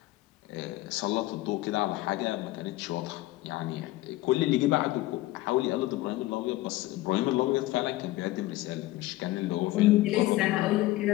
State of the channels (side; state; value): right; quieter; 17.6 dB